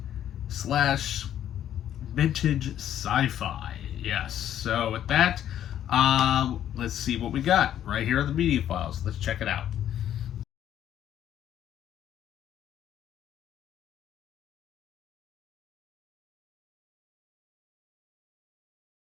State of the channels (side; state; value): right; quieter; 10.9 dB